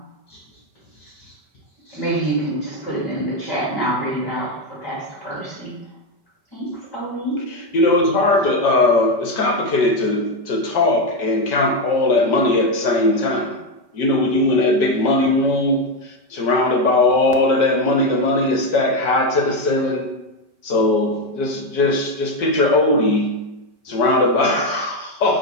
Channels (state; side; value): late; right; 5.2 ms